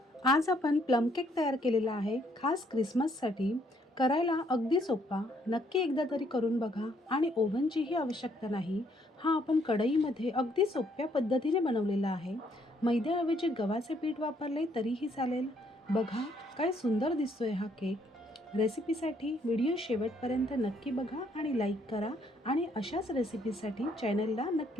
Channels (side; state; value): both; normal; correlation 0.69